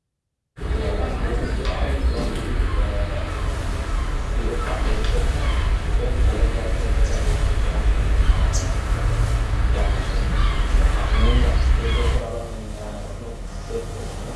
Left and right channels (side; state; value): both; identical; correlation 1.00